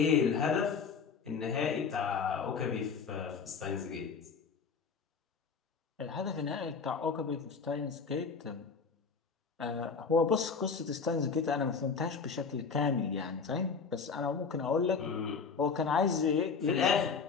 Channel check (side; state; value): right; quieter; 5.5 dB